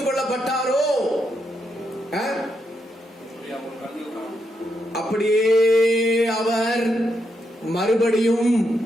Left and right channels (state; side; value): normal; both; correlation 0.81